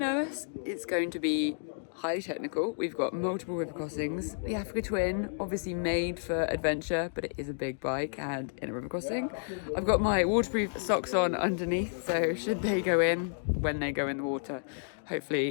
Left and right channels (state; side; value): silent; right; digital silence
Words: It's going to be highly technical. We've got multiple river crossings. The Africa Twin, obviously made for adventure, but it is a big bike and in a river crossing. I've got my waterproof socks on underneath, so should they go in, when they go in the water,